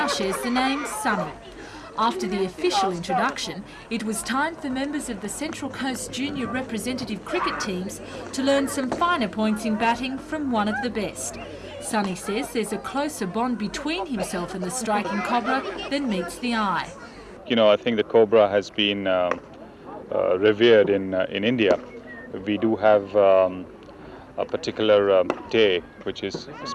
shares the name Sunny. After the official introduction, it was time for members of the Central Coast junior representative cricket teams to learn some finer points in batting from one of the best. Sunny says there's a closer bond between himself and the striking Cobra than meets the eye. You know, I think the Cobra has been revered in India. We do have a particular day which is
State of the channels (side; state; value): both; identical; correlation 1.00